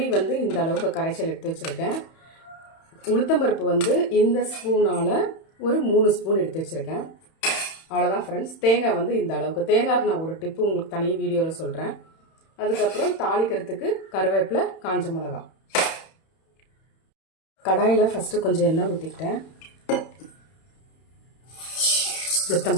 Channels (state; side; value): late; right; 31 ms